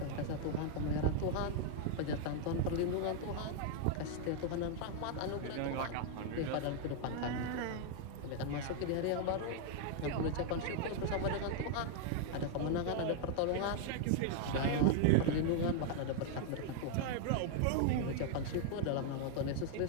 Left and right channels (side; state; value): both; different; correlation 0.00